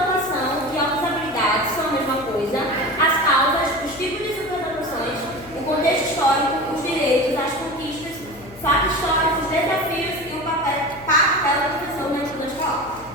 e outras habilidades são a mesma coisa, as causas, os tipos de superdotações, o contexto histórico, os direitos, as conquistas, fatos históricos, desafios e o papel da professora na escola escolar.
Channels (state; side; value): noise; left; hum, 21 dB below the sound